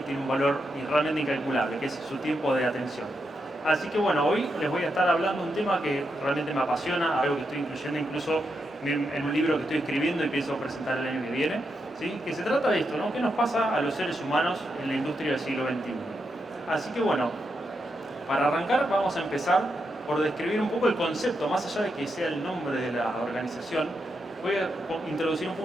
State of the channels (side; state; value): both; normal; correlation 0.84